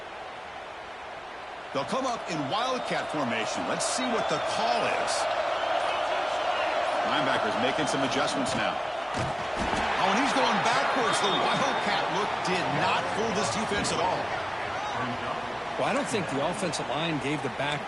They'll come up in wildcat formation. Let's see what the call is. Linebackers making some adjustments now. Oh, and he's going backwards. The wildcat look did not fool this defense at all. Well, I don't think the offensive line gave the back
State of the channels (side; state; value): both; identical; correlation 1.00